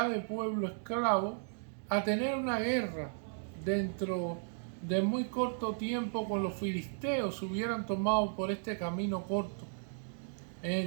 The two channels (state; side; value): silent; left; digital silence